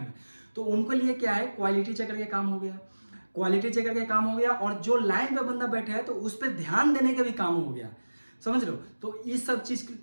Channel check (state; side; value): inverted; both; correlation -1.00